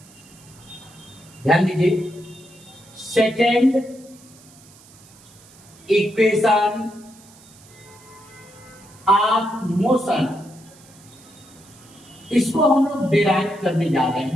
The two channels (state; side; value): noise; right; hiss, 24 dB below the sound